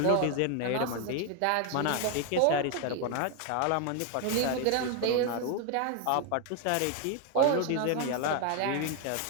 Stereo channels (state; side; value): different; both; correlation 0.01